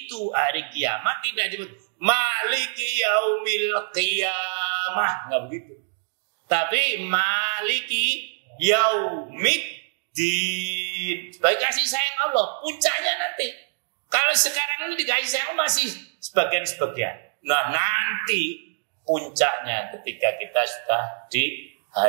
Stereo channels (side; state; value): left; silent; digital silence